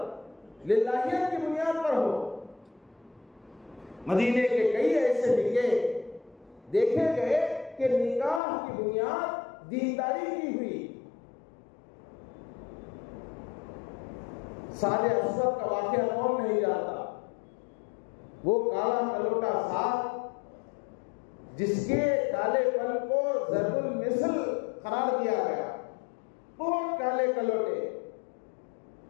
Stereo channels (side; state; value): right; drops out; at 8.4 s